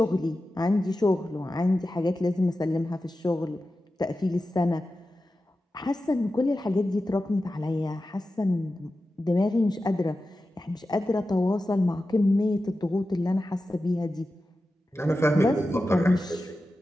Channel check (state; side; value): normal; both; correlation 0.93